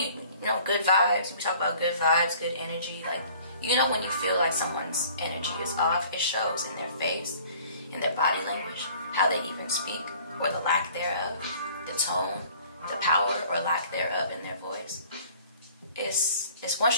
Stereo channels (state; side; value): inverted; both; correlation -0.52